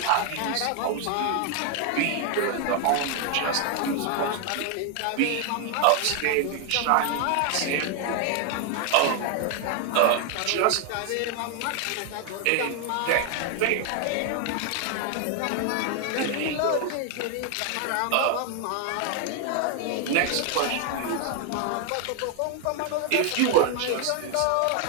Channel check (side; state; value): both; different; correlation 0.00